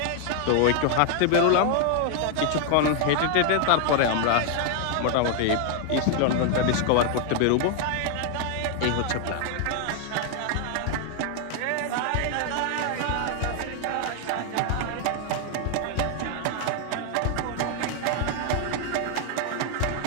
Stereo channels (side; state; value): both; different; correlation 0.00